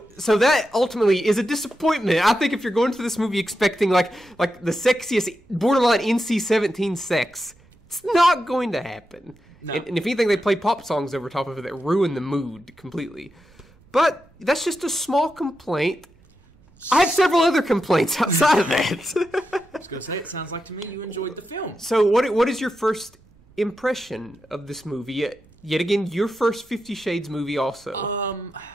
that ultimately is a disappointment. I think if you're going to this movie expecting like the sexiest, borderline NC-17 sex, it's not going to happen. No. And if anything, they play pop songs over top of it that ruin the mood completely. But that's just a small complaint. I have several other complaints outside of that. I was going to say, it sounds like to me you enjoyed the film. So what is your first impression of this movie? Yet again, your first 50 Shades movie also.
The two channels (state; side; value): noise; right; rumble, 29 dB below the sound